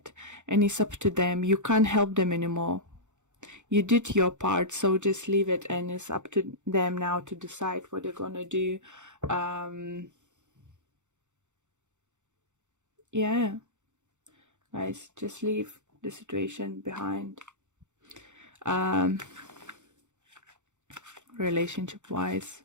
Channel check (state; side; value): late; left; 0.84 ms